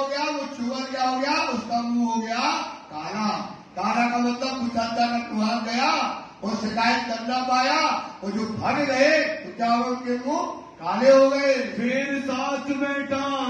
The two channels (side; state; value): both; identical; correlation 1.00